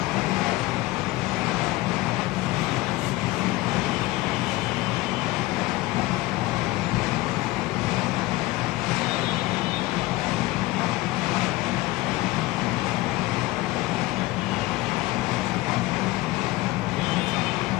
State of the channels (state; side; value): quieter; right; 19.3 dB